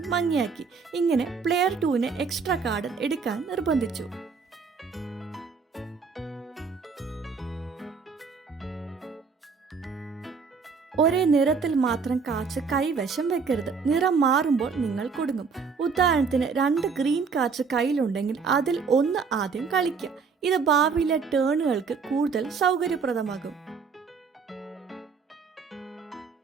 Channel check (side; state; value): left; quieter; 5.4 dB